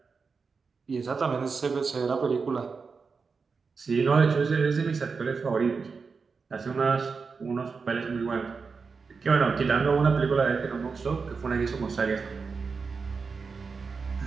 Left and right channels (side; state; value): left; quieter; 5.0 dB